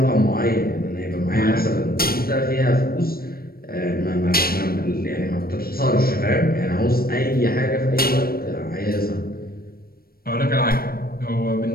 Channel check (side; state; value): right; late; 0.44 ms